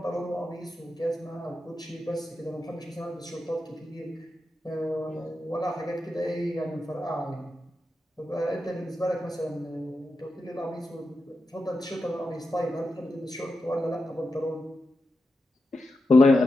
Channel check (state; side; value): normal; both; correlation 0.89